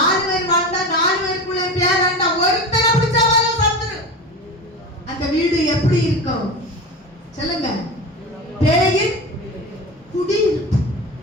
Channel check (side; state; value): both; normal; correlation 0.27